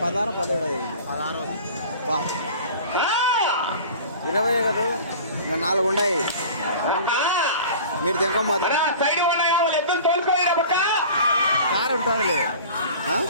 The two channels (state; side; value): inverted; both; correlation -0.41